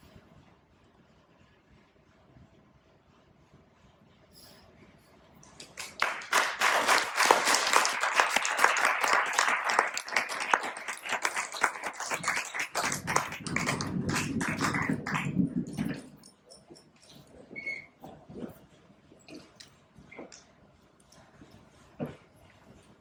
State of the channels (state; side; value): identical; both; correlation 1.00